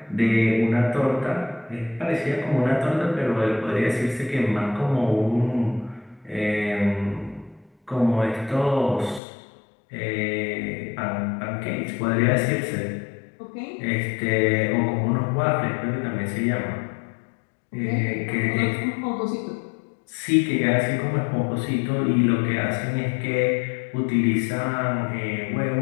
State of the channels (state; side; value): drops out; right; at 9.2 s